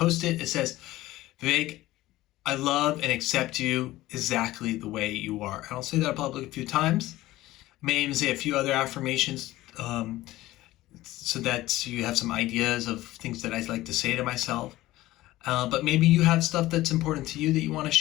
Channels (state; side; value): quieter; right; 16.8 dB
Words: It says, Vivek, I love and accept you exactly the way you are. And I'll say that probably a few times. I may even say a few other affirmations so that you have some ideas of things that I like to say to myself. But maybe you have stuff that's important to you that you want to